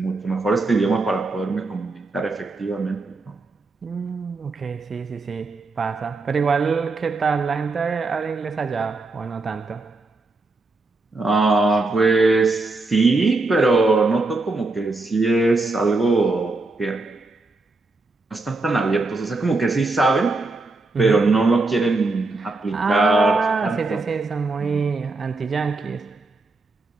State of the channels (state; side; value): quieter; left; 3.3 dB